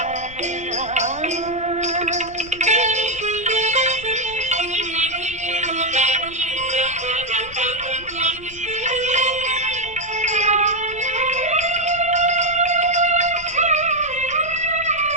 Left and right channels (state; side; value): noise; left; rumble, 19 dB below the sound